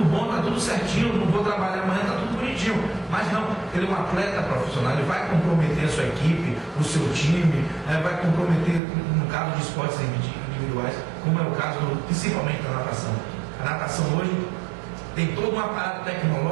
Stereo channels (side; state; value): left; drops out; at 8.8 s